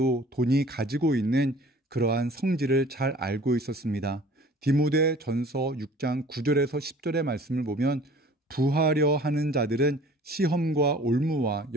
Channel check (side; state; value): both; normal; correlation 0.49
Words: 돈이 가지고 있는 그러한 성질을 잘 알고 있었습니다. 디모데 전서 6장 9절에서 10절의 말씀을 보면 부하려 하는 자들은 시험과 올무와